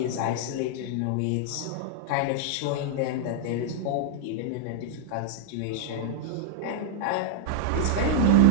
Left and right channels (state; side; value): different; both; correlation -0.01